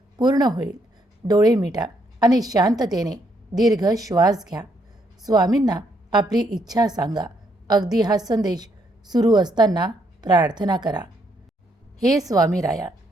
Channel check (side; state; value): both; normal; correlation 0.73